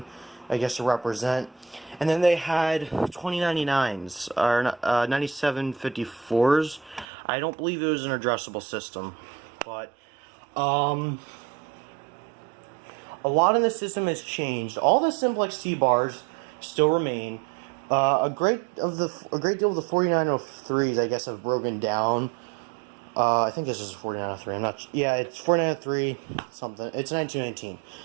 I guess, to represent. And then they had 2099s, or 9754s. I don't believe it was an addressable system, but a lot in the system has changed. All the simplex T-bars still remain. A great deal of the 4903s, I guess, have broken down. I think this is a 4903. I'm not. Yeah, it's 4903 something. It's 1919.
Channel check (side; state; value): left; drops out; at 7.1 s